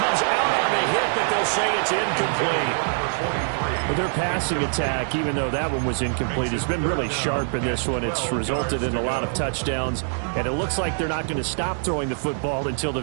out on the hit, but they'll say it's incomplete. But their passing attack, even though that one was incomplete, has been really sharp in this one. It's resulted in a lot of touchdowns, and it looks like they're not going to stop throwing the football until the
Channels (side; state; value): left; silent; digital silence